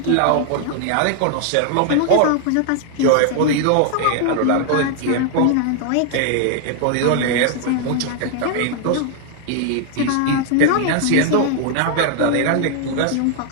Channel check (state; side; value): different; both; correlation 0.00